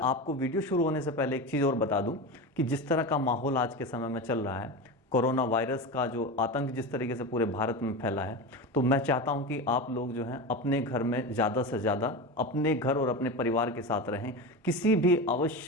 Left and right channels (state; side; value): normal; both; correlation 0.23